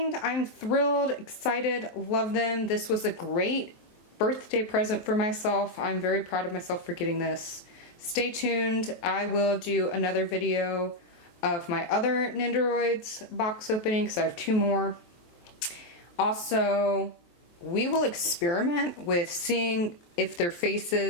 I'm thrilled, excited, love them. This was a great birthday present for myself. I'm very proud of myself for getting this. Stay tuned. I will do another video of my other Nendoroids box opening because I have 2 more. Also, we will experiment with seeing if their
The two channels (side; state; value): right; late; 23 ms